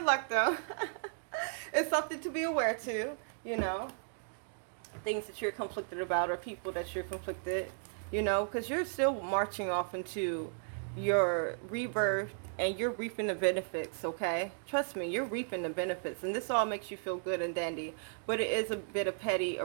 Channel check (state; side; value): silent; left; digital silence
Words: luck, though. It's something to be aware to, you know, things that you're conflicted about or people that you're conflicted, you know, because you're still marching off into your rebirth and you're reaping the benefits, okay? Trust me, you're reaping the benefits, and this all makes you feel good and dandy, but it is a bit of petty